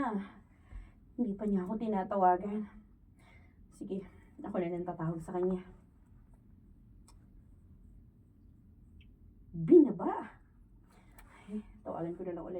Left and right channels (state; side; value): identical; both; correlation 1.00